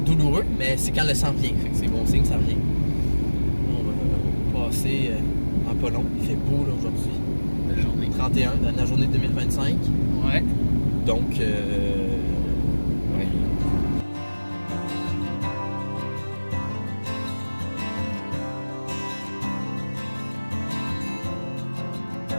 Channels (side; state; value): both; inverted; correlation -1.00